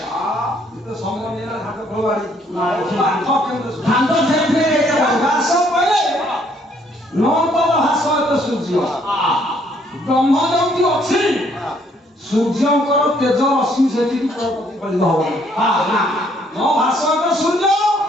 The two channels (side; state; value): both; normal; correlation 0.66